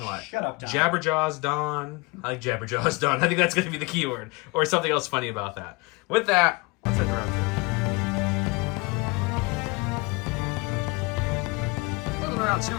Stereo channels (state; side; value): quieter; right; 26.2 dB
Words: a lot. Shut up, Don. Jabberjaws Don. I like Jabberjaws Don. I think that's going to be the keyword. Or something else funny about that. With that, let's head to round 2. Moving around